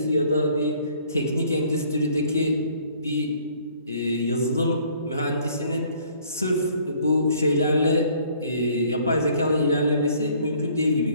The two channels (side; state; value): both; inverted; correlation -0.59